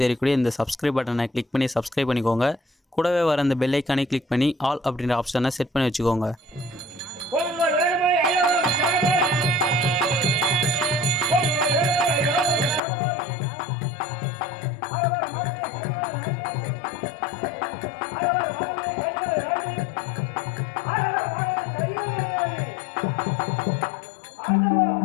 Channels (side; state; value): right; drops out; at 12.8 s